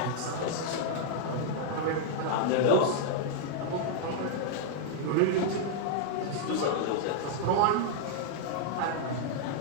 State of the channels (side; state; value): both; different; correlation -0.01